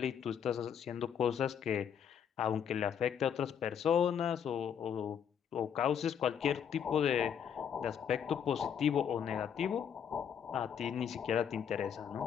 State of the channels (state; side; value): quieter; right; 8.1 dB